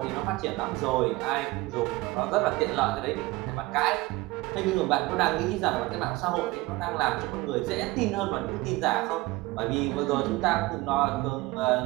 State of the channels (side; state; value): left; quieter; 20.5 dB